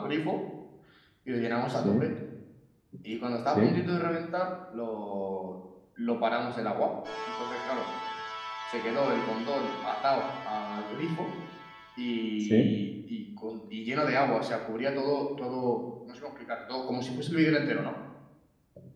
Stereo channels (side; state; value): both; identical; correlation 1.00